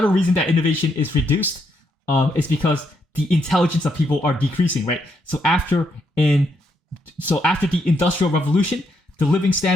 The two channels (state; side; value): normal; both; correlation 0.77